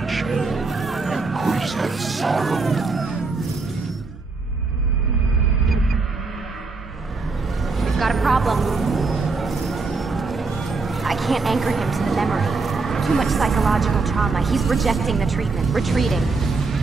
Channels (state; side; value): quieter; left; 4.0 dB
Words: increaseth sorrow. We've got a problem. I can't anchor him to the memory. Too much psychological trauma. He's rejecting the treatment, retreating.